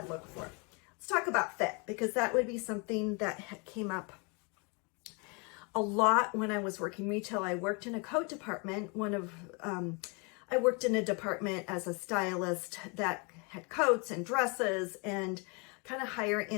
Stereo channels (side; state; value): right; quieter; 32.1 dB